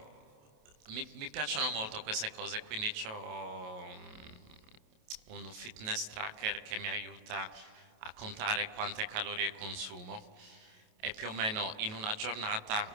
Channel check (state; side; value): late; left; 28 ms